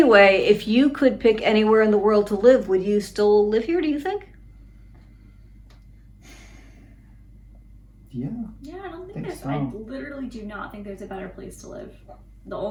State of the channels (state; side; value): identical; both; correlation 1.00